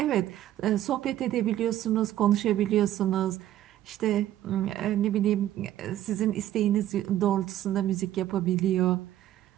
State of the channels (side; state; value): left; quieter; 12.8 dB